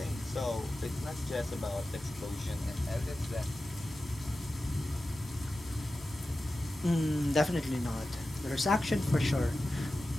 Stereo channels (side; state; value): both; normal; correlation 0.94